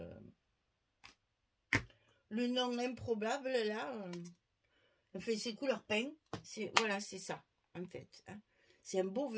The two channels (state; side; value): identical; both; correlation 1.00